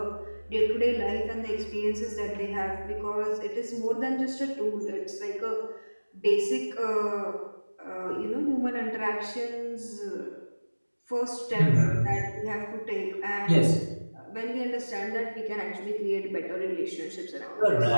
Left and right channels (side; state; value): both; inverted; correlation -1.00